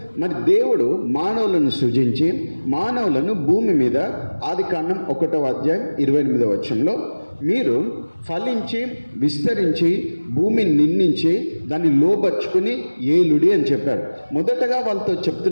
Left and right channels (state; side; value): inverted; both; correlation -1.00